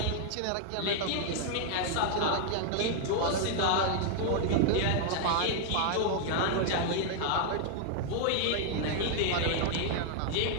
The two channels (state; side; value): different; both; correlation 0.00